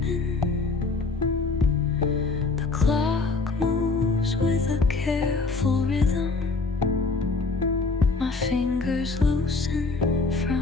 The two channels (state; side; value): quieter; right; 3.9 dB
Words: The clock moves with a careful rhythm. My fingers loosen